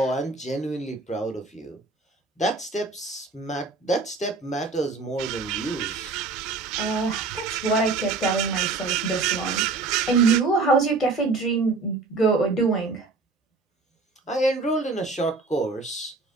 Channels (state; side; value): quieter; left; 3.8 dB